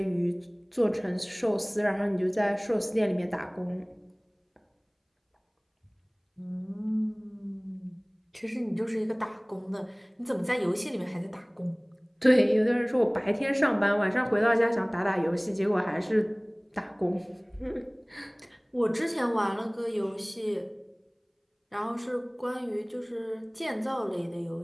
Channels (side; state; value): both; identical; correlation 1.00